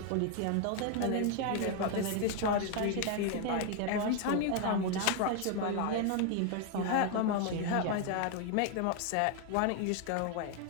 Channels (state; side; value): different; both; correlation 0.00